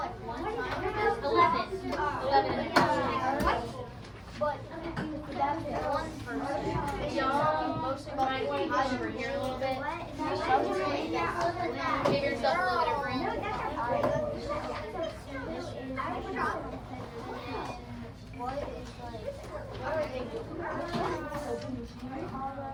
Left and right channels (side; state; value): both; identical; correlation 1.00